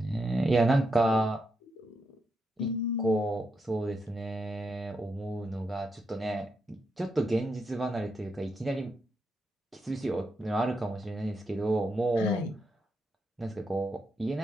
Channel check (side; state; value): both; normal; correlation 0.83